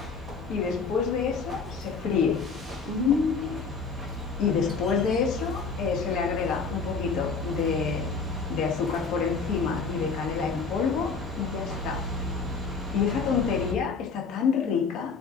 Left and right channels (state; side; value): quieter; right; 4.9 dB